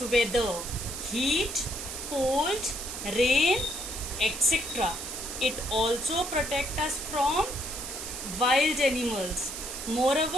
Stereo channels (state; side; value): noise; right; hiss, 7 dB below the sound